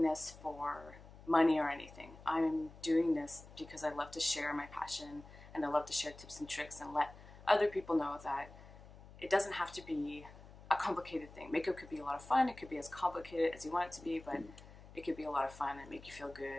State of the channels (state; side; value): noise; left; hum, 19 dB below the sound